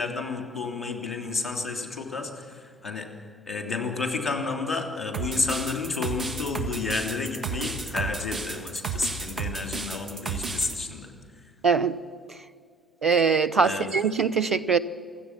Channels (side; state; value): both; normal; correlation 0.51